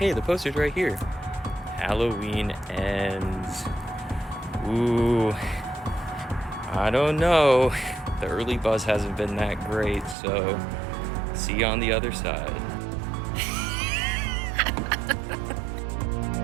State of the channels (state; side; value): drops out; left; at 10.2 s